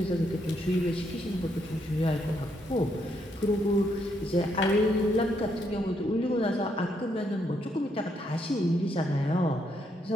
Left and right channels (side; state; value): both; normal; correlation 0.75